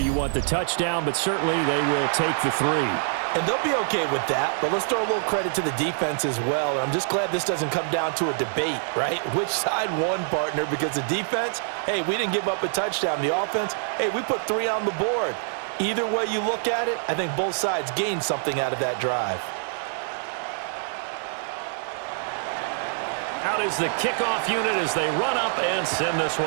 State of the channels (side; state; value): left; silent; digital silence